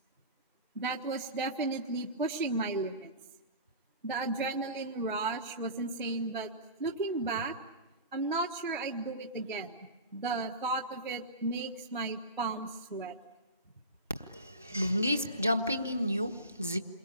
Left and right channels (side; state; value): both; inverted; correlation -0.31